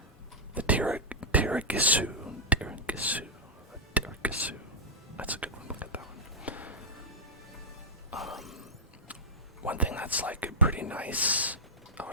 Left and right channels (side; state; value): both; normal; correlation -0.08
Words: The Tiragisu. That's a good one. Look at that one. One thing that's like pretty nice. Oh